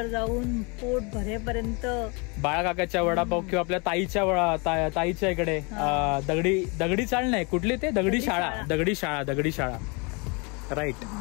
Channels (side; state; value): right; quieter; 31.0 dB